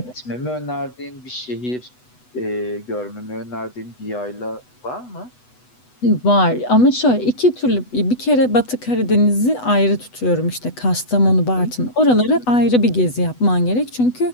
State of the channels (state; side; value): late; right; 8.1 ms